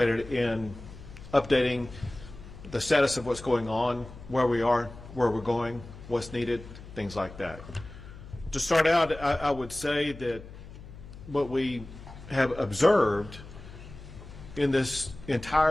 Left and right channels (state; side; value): noise; left; hum, 16 dB below the sound